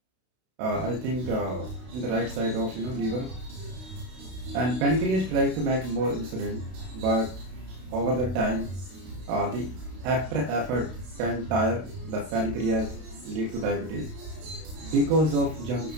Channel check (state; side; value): late; left; 32 ms